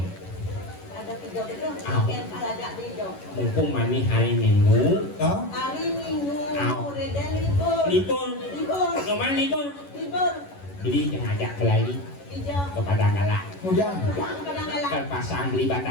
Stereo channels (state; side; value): late; right; 11 ms